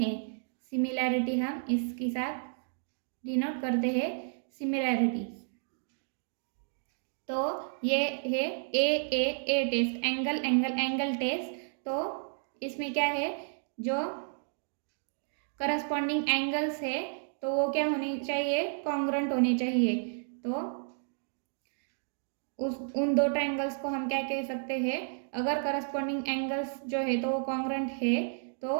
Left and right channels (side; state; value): left; silent; digital silence